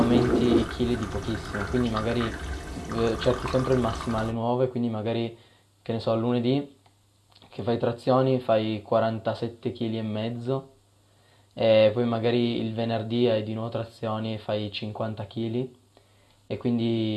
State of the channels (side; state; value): both; identical; correlation 1.00